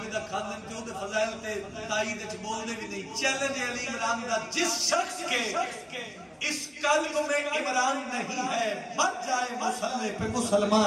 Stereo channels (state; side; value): identical; both; correlation 1.00